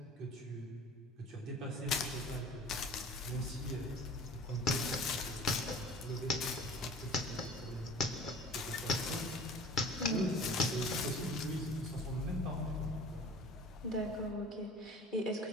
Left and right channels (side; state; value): both; normal; correlation 0.43